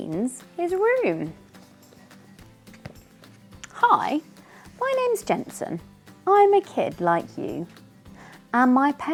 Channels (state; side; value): identical; both; correlation 1.00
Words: his room. Hi, my name's Jensen. I'm a kid like you, and my